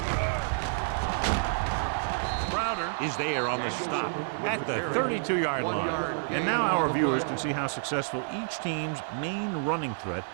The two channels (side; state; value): left; silent; digital silence